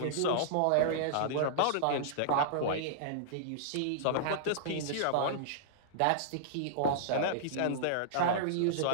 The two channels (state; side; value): different; both; correlation -0.02